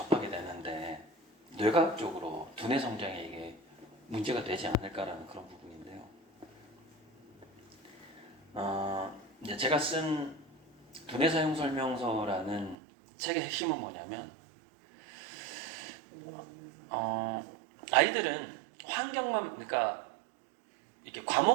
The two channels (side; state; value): left; drops out; at 12.8 s